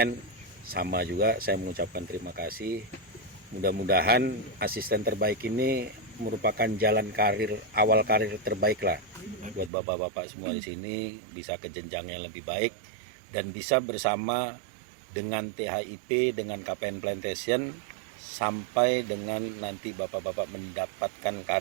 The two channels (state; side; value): drops out; left; at 9.7 s